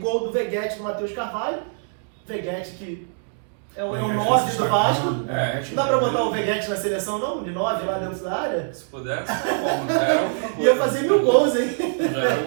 do Veguete do Matheus Carvalho. Veguete que é o 9 do Vasco. Não dá pra botar o Veguete na seleção não? De 9 lá dentro da área? Se pudesse, é ia fazer 1000 gols, hein? É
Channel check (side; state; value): left; silent; digital silence